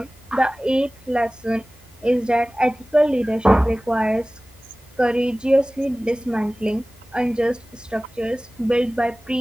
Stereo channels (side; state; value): both; normal; correlation 0.98